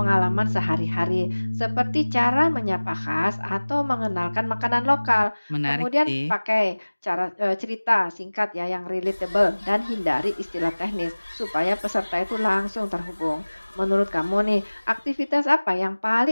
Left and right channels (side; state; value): both; inverted; correlation -1.00